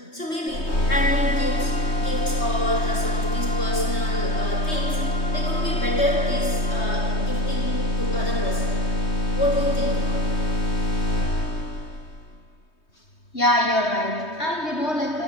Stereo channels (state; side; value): late; right; 3.2 ms